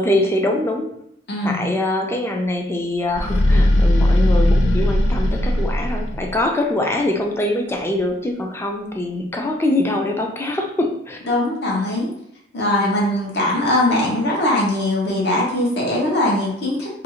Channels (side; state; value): both; normal; correlation 0.63